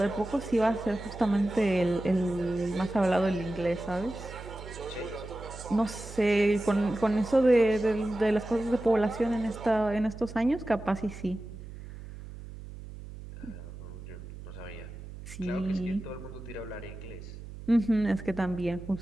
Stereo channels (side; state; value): right; noise; hum, 13 dB below the sound